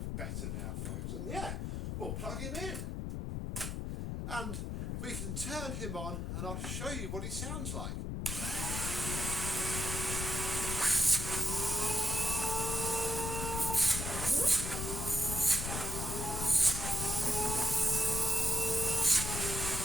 better now, folks? And yeah, we'll plug him in. And we can turn him on and I'll show you what he sounds like.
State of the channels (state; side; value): noise; left; rumble, 3 dB below the sound